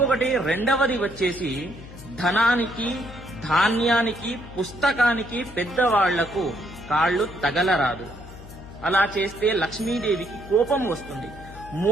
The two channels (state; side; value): noise; left; hum, 17 dB below the sound